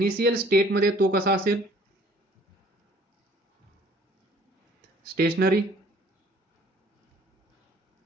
स्टेट मध्ये तो कसा असेल? स्टेशनरी.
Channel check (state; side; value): normal; both; correlation 0.56